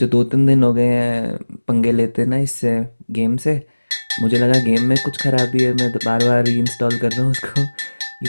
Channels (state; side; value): inverted; both; correlation -1.00